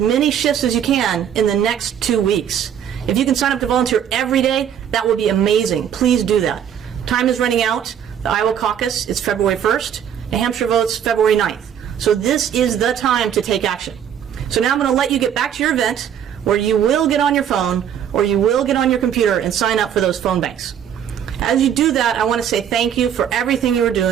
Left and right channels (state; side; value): quieter; left; 9.1 dB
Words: many shifts as you can in the next 2 weeks. If you can sign up to volunteer every day, that would be amazing. Please do that. Time is running out. The Iowa caucus is February 1st. New Hampshire votes February 9th. So this is the time to take action. So now I'm going to let you get back to your event where you will get on your phone or you will get on your computer and sign up for those phone banks. As you do that, I want to say thank you for everything you are